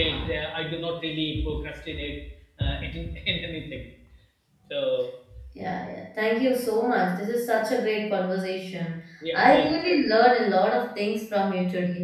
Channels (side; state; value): both; identical; correlation 1.00